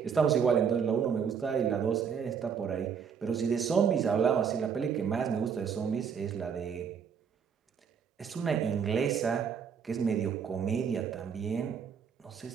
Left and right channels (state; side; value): quieter; left; 6.9 dB